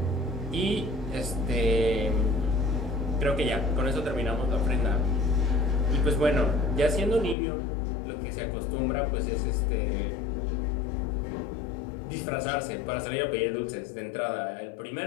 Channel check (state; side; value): drops out; right; at 7.4 s